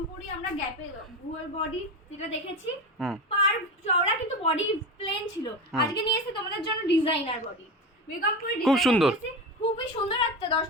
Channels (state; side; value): normal; both; correlation 0.23